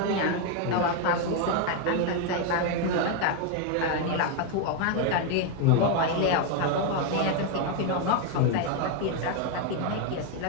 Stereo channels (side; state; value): both; different; correlation 0.01